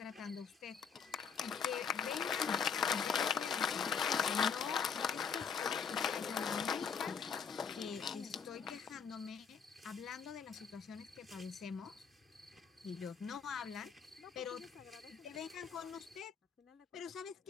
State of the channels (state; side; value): quieter; right; 6.5 dB